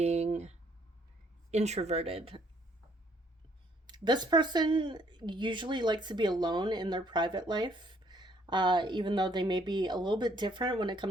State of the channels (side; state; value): both; normal; correlation 0.65